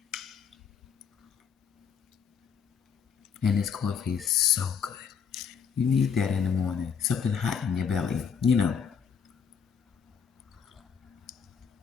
And this coffee is so good. You need that in the morning. Something hot in your belly,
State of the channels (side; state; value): right; quieter; 6.9 dB